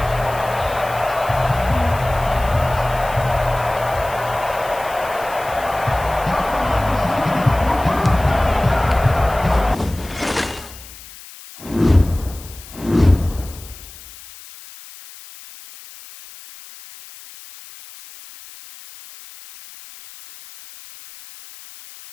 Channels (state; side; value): noise; left; hiss, 18 dB below the sound